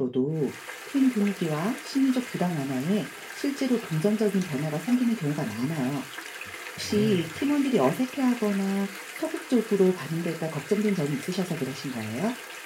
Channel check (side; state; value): both; identical; correlation 1.00